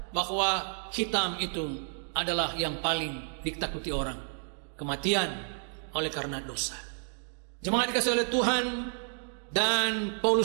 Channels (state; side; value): silent; left; 57 dB below the other